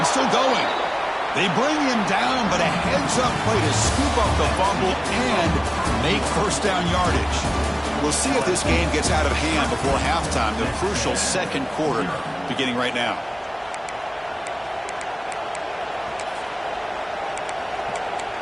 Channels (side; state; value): both; identical; correlation 1.00